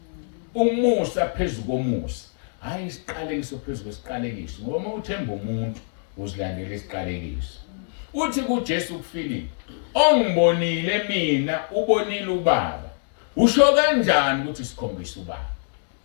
Umusa phezu komusa. Hayi isiqalekiso phezu kwesiqalekiso. Ngoba uma uthemba umuntu uzilandela isiqalekiso. Uthi kuJesu kuFilipi, ongibonile mina ubonile ubaba. Usho kanjani ukuthi sikhombisa ubaba?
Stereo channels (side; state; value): right; silent; digital silence